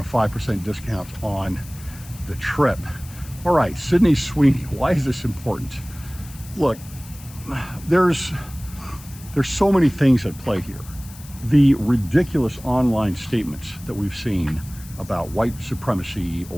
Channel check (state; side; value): noise; left; hiss, 19 dB below the sound